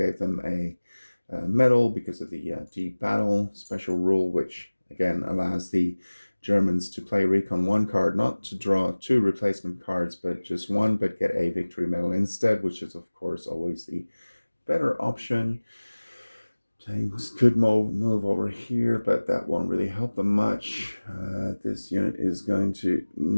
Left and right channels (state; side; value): inverted; both; correlation -1.00